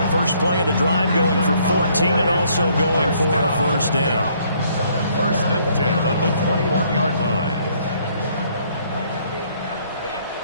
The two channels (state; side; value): inverted; both; correlation -0.65